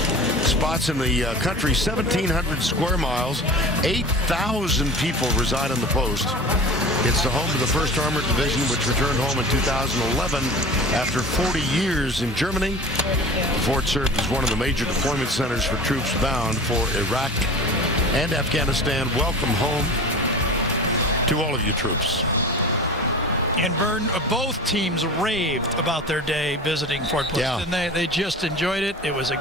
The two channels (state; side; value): normal; both; correlation 0.36